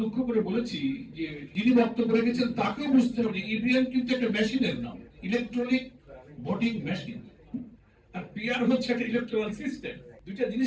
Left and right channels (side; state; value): both; identical; correlation 1.00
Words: দুঃখ করে বলেছি যে যিনি বক্তব্য রেখেছেন তাকেও বুঝতে হবে ইভিএম কিন্তু একটা মেশিনের নাম, ইলেকট্রনিক ভোটিং মেশিন, আর পিআর হচ্ছে একটা ইলেকট্রাল সিস্টেম। দুইটা